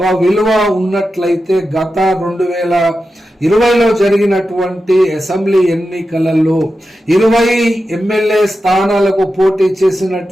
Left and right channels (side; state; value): both; normal; correlation 0.91